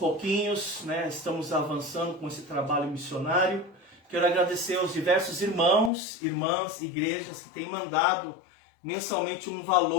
né, estamos avançando com esse trabalho missionário. Quero agradecer aos diversos irmãos, irmãs, igrejas que têm mandado mensalmente um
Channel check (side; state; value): right; drops out; at 5.9 s